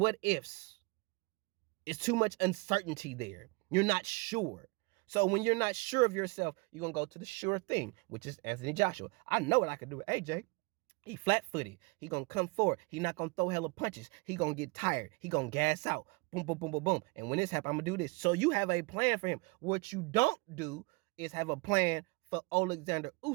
ifs. It's too much uncertainty there. You're not sure. So when you're not sure of yourself, you're going to go to the sure thing, which is Anthony Joshua. I know what I can do with AJ. He flat-footed. He gonna come forward. He not gonna throw hella punches. He gonna get tired. He gonna gas out. Boom, boom, boom, boom, boom. And when this happens, I'm gonna do this. So you have a plan for him. What you don't do is have a plan for Alexander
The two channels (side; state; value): left; quieter; 28.1 dB